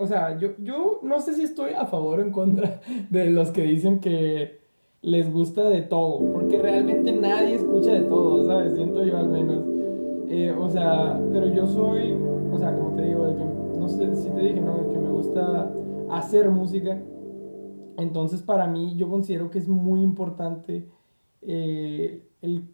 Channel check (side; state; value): both; inverted; correlation -1.00